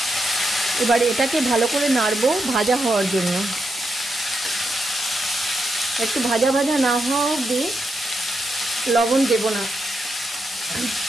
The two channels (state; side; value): normal; both; correlation 0.84